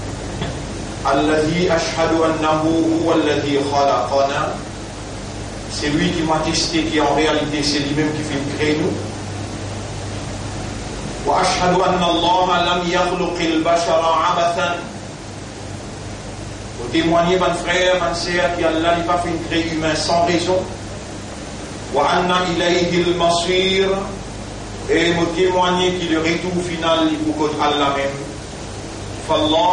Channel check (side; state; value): both; identical; correlation 1.00